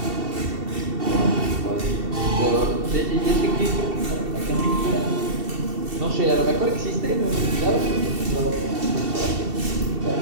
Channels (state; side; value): late; left; 2.7 ms